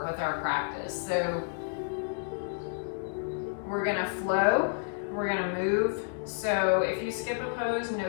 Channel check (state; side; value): silent; right; digital silence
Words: with our practice. So we're gonna flow, we're gonna move. So if you skip a pose,